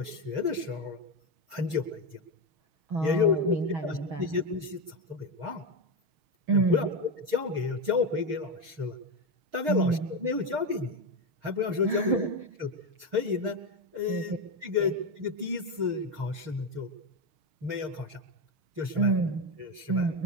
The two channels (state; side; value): late; left; 6.5 ms